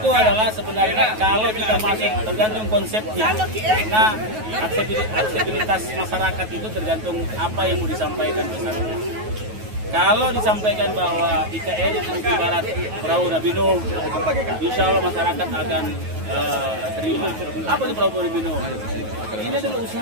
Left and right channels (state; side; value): late; left; 9.3 ms